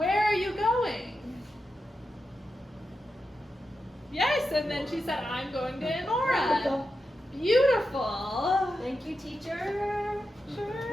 are you going? Yes, and then she said, I'm going to Enora. Beautiful. Thank you, teacher.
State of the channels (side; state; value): both; normal; correlation 0.89